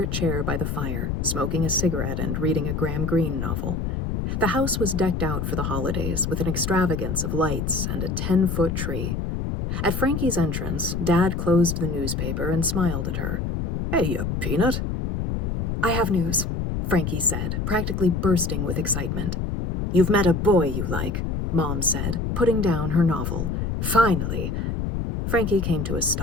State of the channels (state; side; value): noise; left; rumble, 2 dB below the sound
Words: chair by the fire, smoking a cigarette and reading a Graham Greene novel. The house was decked out for the holidays with an extravagance of lights and a 10-foot tree. At Frankie's entrance, Dad closed the newspaper and smiled at her. "Hey, you peanut." "I have news," Frankie said, practically bursting with excitement. "You've met a boy you like," Mom said, putting down her novel. "Finally." Frankie came to a